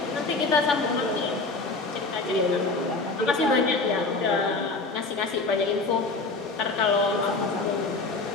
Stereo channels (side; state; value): right; quieter; 3.6 dB